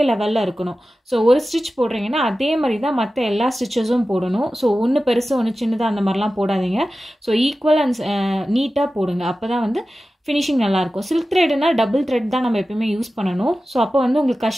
லெவலில் இருக்கணும். ஸோ ஒரு ஸ்டிச் போடுறீங்கன்னா அதே மாதிரி தான் மற்ற எல்லா ஸ்டிச்சஸும் போடணும். ஸோ ஒன்று பெருசு ஒன்று சின்னதாக அந்த மாதிரிலாம் போடாதீங்க. ஸோ ஈக்குவல் அண்ட் நீட்டாக போடுங்க. அப்போ தான் வந்து ஃபினிஷிங் நல்லாயிருக்கும். சில்க் த்ரெட்னா டபுள் த்ரெட் தான் நம்ம எப்பயுமே யூஸ் பண்ணணும். ஸோ அப்போ வந்து உங்களுக்கு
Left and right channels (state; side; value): normal; both; correlation 0.94